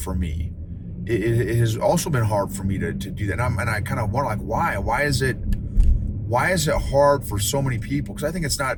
me. It has also been hard for me to do that. And I kind of wonder, like, why is it hard for so many people? Because I think it's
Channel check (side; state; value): both; identical; correlation 1.00